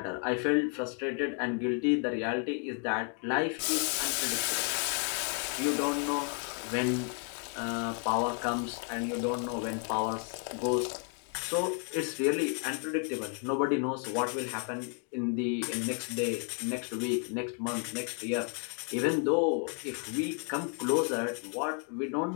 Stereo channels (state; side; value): quieter; right; 40.0 dB